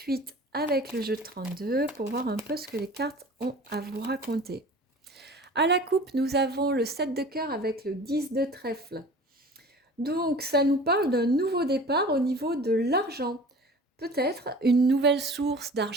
avec le jeu de 32 pour voir un peu ce que les cartes ont à vous raconter. À la coupe, nous avons le 7 de cœur avec le 10 de trèfle. Donc ça nous parle d'un nouveau départ au niveau de l'argent. Peut-être une nouvelle source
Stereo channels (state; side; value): normal; both; correlation 0.42